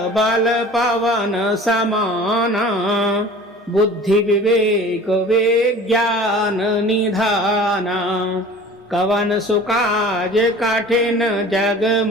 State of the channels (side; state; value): both; normal; correlation 0.43